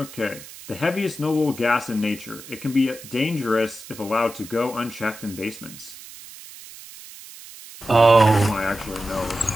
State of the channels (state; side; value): noise; right; hiss, 16 dB below the sound